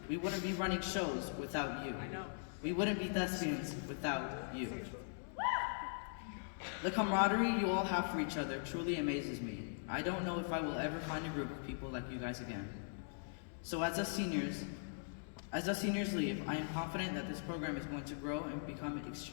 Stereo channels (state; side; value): silent; right; digital silence